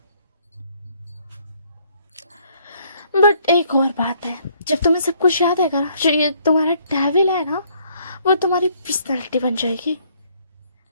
बट एक और बात है, जब तुम्हें सब कुछ याद आएगा ना, जो ये तुम्हारा डेविल है ना, वो तुम्हारी पर्सनालिटी बन जाएगी।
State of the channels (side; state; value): both; inverted; correlation -0.65